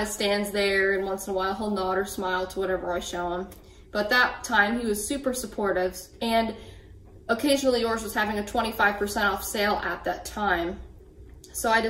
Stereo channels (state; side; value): identical; both; correlation 1.00